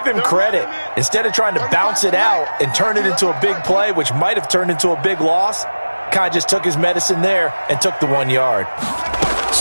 him credit. Instead of trying to bounce it out and turn it into a big play, which might have turned into a big loss, kind of just took his medicine there and took the 1 yard.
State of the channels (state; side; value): inverted; both; correlation -1.00